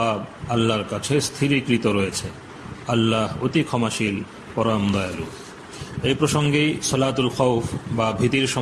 আল্লাহর কাছে স্থিরীকৃত রয়েছে। আল্লাহ অতি ক্ষমাশীল, পরম দয়ালু। এই প্রসঙ্গেই সালাতুল খাউফ বা ভীতির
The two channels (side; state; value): both; identical; correlation 1.00